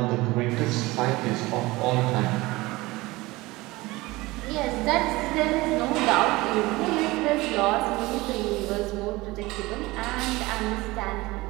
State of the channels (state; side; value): quieter; left; 20.9 dB